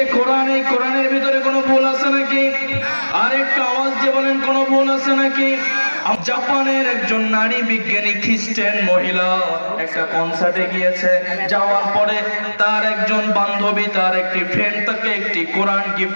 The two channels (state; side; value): inverted; both; correlation -1.00